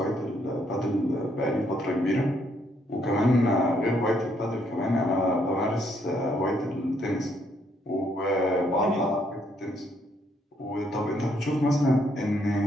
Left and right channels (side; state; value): both; normal; correlation 0.71